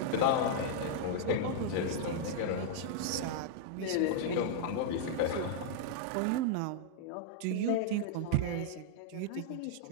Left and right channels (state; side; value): different; both; correlation -0.01